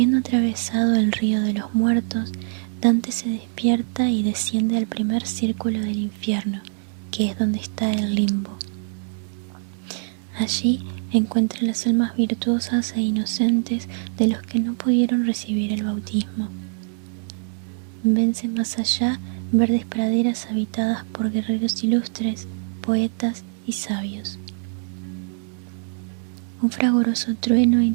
atravesado el río de los muertos, Dante se despierta y desciende al primer círculo del infierno, que es donde está el limbo. Allí encuentra las almas virtuosas e inocentes de los que no pudieron recibir el bautismo. Vence más allá verdes praderas habitadas por guerreros ilustres, poetas y sabios. Un fragoroso trueno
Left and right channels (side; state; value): left; silent; digital silence